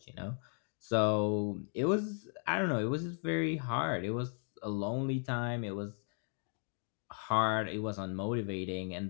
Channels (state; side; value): silent; right; 54 dB below the other